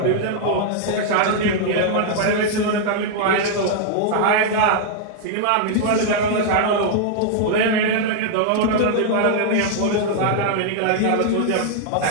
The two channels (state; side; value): different; both; correlation -0.01